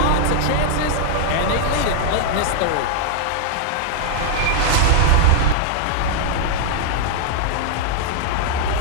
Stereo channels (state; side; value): different; both; correlation 0.00